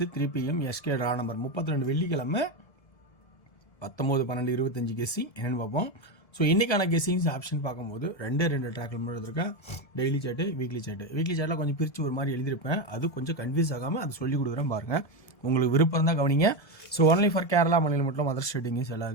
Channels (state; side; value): late; right; 1.7 ms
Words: 3 PM SK draw number 32 வெள்ளிக்கிழமை 19/12/25 guessing என்னென்னு பார்ப்போம். ஸோ இன்றைக்கான கெஸ்ஸிங்ஸ் ஆப்ஷன் பார்க்கும்போது ரெண்டு ட்ராக்கில் மட்டும் இருக்கேன். டெய்லி சார்ட்டு, வீக்லி சார்ட்டில் கொஞ்சம் பிரித்து ஒரு மாதிரி எழுதியிருப்பேன். அது கொஞ்சம் கன்ஃபியூஸ் ஆகாமல் அது சொல்லிக் கொடுக்குறேன் பாருங்கள். உங்களுக்கு விருப்பம் தான் கவனிங்க. ஸோ ஒன்லி ஃபார் கேரளா மாநிலம் மட்டும் அதர் ஸ்டேட்டிங்கும்